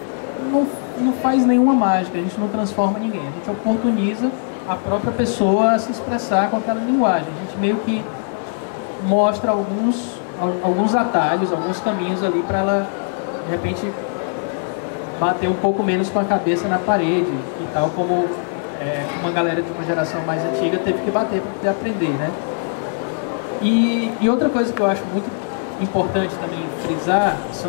não não faz nenhuma mágica, a gente não transforma ninguém, a gente oportuniza a própria pessoa a se expressar com aquela linguagem. A gente meio que mostra alguns atalhos, alguns caminhos ali para ela, de repente, bater um pouco menos com a cabeça na parede e tal, como uma galera de uma geração mais antiga teve que bater para poder aprender, né? E outra coisa que eu acho muito importante também frisar,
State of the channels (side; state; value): right; silent; 65 dB below the other